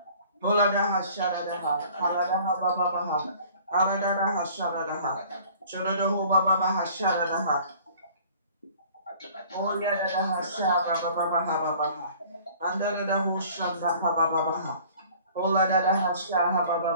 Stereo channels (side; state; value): both; inverted; correlation -0.51